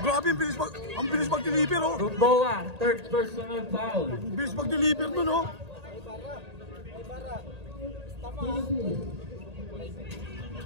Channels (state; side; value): late; left; 1.8 ms